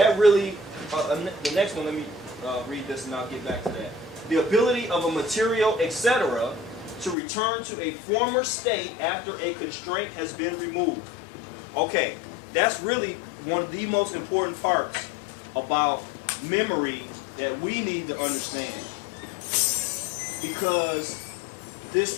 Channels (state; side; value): drops out; right; at 7.2 s